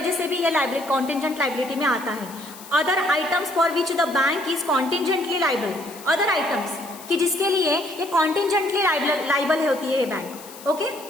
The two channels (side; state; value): left; noise; hiss, 17 dB below the sound